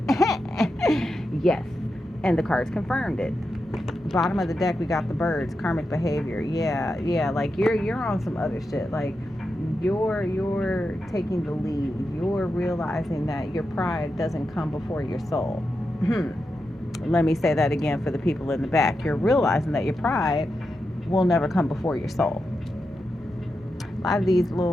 Yes, and the cards confirmed it. Bottom of the deck, we got the birds, karmic behavior. Yeah, like you're on some other shit. Like you're taking the lead. You're realizing that your pride doesn't come before your soul. Let me say that again for the people in the back. You're realizing that your pride will never come before your soul. A lot of these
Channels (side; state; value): both; normal; correlation 0.88